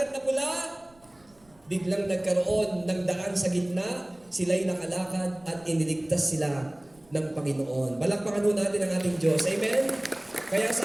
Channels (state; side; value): noise; right; rumble, 30 dB below the sound